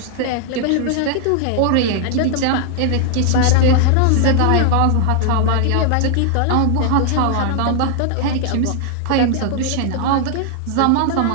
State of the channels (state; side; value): different; both; correlation 0.00